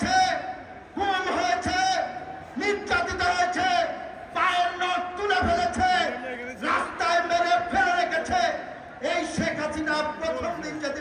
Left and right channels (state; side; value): identical; both; correlation 1.00